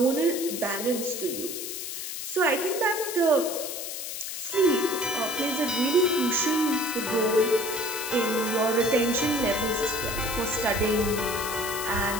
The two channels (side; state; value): left; noise; hiss, 6 dB below the sound